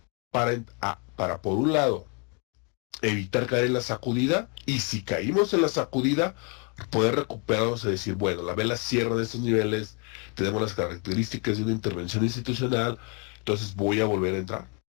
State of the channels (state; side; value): quieter; right; 35.4 dB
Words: para por un lado, evitar caer en la sacudida, y si caímos en la sacudida, poder recuperarnos y decir, bueno, la vela cierra en estos niveles, tenemos las características de una intervención institucional, entonces voy a volver a entrar